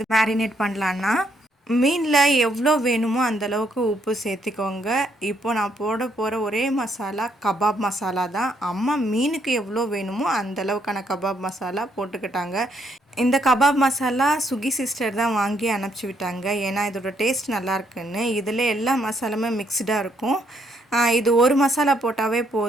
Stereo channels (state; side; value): normal; both; correlation 0.73